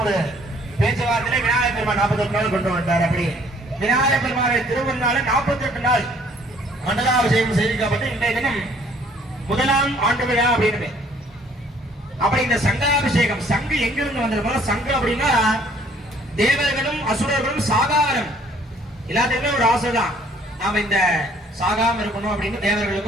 ஒரு பேச்சுவார்த்தையில விநாயகர் பெருமான் 48 நாள் கொண்டு வந்தார். அப்படி விநாயகர் பெருமானை திருவண்ணால 48 நாள் மண்டலாபிஷேகம் செய்திக்கப்பட்டு இன்றைய தினம் முதலாம் ஆண்டு விழா அப்படின்னு. அப்படி இந்த சங்காபிஷேகம் சங்கு எங்கிருந்து வந்திருக்கோம்? சங்கு அப்படின்னா தேவர்களும் அசுரர்களும் சாகாரம் எல்லாத்துக்குமே ஒரு ஆசை தான், நாம இந்த சாகாம இருக்கணும் அப்படின்னு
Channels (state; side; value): normal; both; correlation 0.59